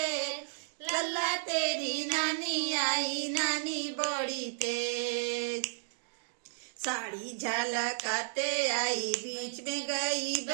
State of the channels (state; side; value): silent; left; digital silence